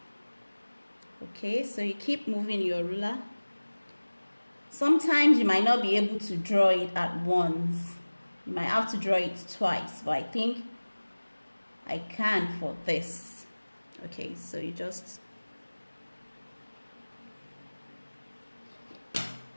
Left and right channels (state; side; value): inverted; both; correlation -1.00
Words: Okay, so you keep moving your ruler. Sometimes you might not be able to draw it at once. You might have to draw it twice, but I think I can for this. Okay, so you just,